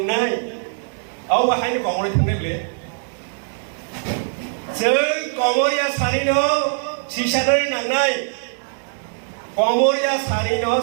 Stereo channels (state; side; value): silent; left; digital silence